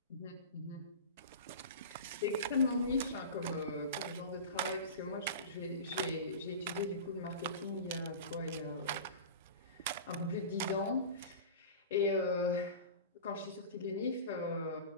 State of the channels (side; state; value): both; inverted; correlation -0.32